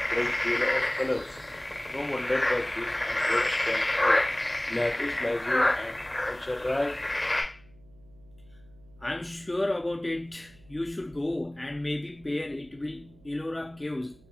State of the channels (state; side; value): noise; right; hum, 27 dB below the sound